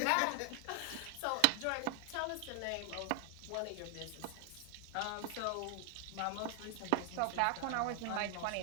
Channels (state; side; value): different; both; correlation 0.00